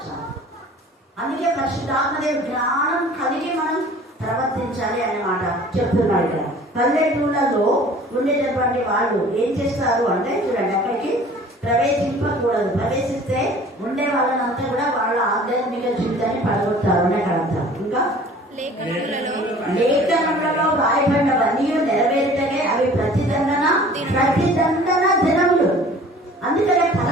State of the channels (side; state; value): both; normal; correlation 0.48